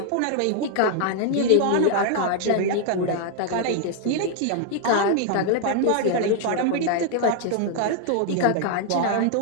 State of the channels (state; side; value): different; both; correlation 0.00